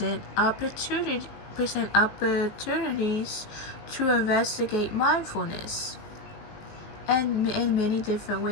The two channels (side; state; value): right; late; 19 ms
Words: opportunities to investigate mindfulness and in many different